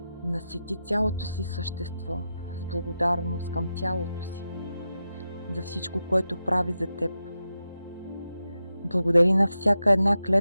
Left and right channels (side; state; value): both; inverted; correlation -0.90